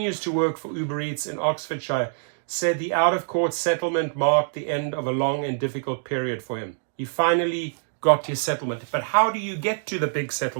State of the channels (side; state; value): left; silent; digital silence